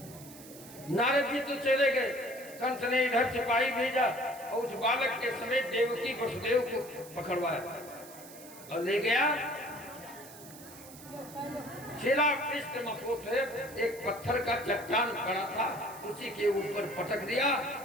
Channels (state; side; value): noise; right; hiss, 17 dB below the sound